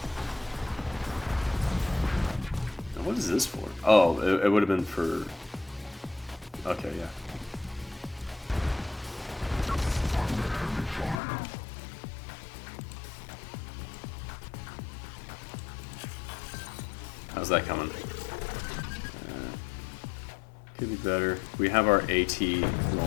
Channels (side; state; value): right; drops out; at 11.2 s